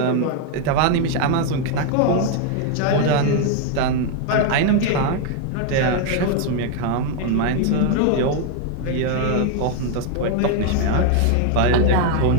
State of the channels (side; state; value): both; different; correlation 0.01